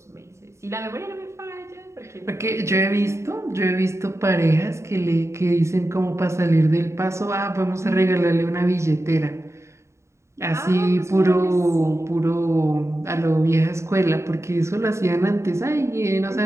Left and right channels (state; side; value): late; left; 0.14 ms